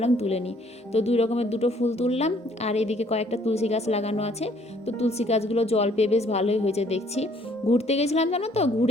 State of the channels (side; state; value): both; normal; correlation 0.62